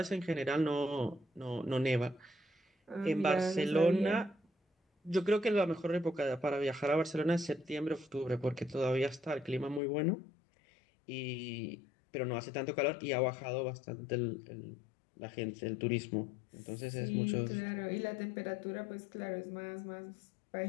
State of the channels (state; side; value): drops out; right; at 9.8 s